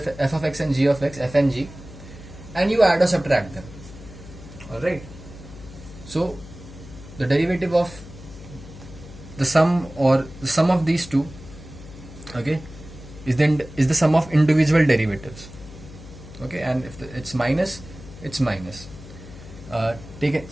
of x and g of x, f and g, and you add or subtract them. Alright, so the derivative of the sum or the sum of these two, okay, is the sum of individual derivatives. Okay, and if it's minus, it's minus.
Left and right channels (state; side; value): noise; left; hum, 16 dB below the sound